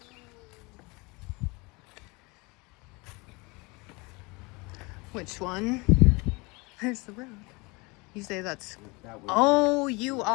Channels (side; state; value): right; quieter; 26.4 dB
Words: Which one? There's the road. You say that's. Oh, you